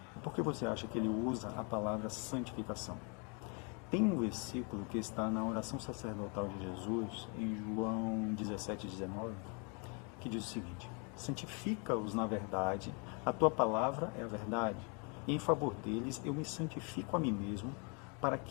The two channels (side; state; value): right; quieter; 34.6 dB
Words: Por que você acha que ele usa a palavra santificação? Tem um versículo que está na oração sacerdotal de Jesus, em João 17:19, que diz o seguinte: santifica-os na verdade, a tua palavra é a verdade, e em favor deles eu me santifico a mim mesmo, para